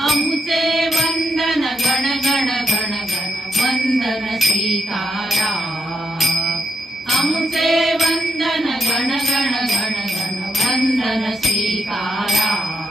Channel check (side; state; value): both; normal; correlation 0.81